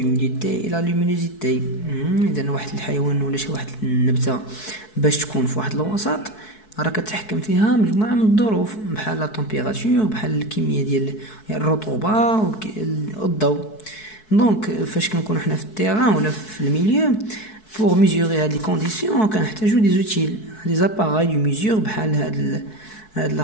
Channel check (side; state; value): right; late; 4.6 ms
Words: et la luminosité. إذا واحد الحيوان ولا شي واحد النبتة باش تكون في واحد الوسط راه كتحكم فيها مجموعة من الظروف بحال لا تمبيراتور بحال الكمية ديال الرطوبة والضوء. دونك فاش كنكونوا حنا في التيران ولا في الميليو pour mesurer هاد لي كونديسيون كنحتاجو دي زوتيل دي زاباراي دو ميزور بحال هاد